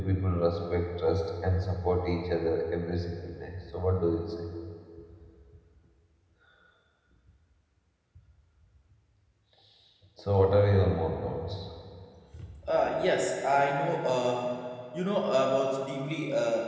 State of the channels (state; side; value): identical; both; correlation 1.00